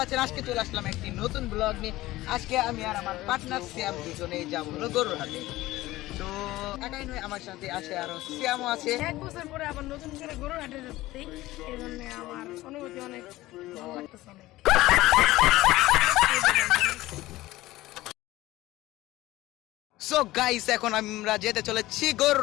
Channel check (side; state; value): right; quieter; 17.5 dB